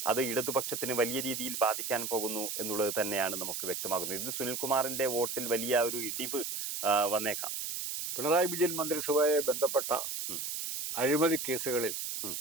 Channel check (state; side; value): noise; right; hiss, 4 dB below the sound